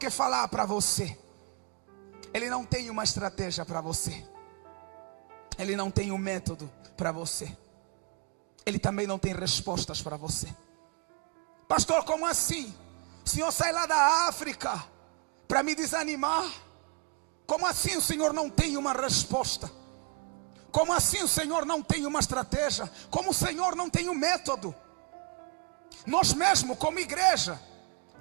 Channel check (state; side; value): quieter; left; 33.1 dB